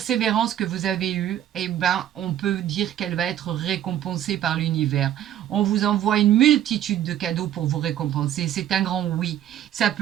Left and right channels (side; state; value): left; quieter; 11.3 dB